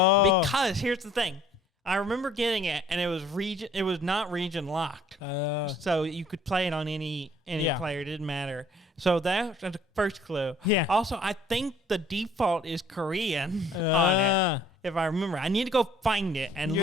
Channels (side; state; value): both; normal; correlation 0.57